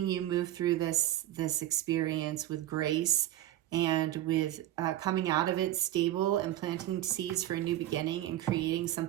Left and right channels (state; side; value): quieter; left; 13.8 dB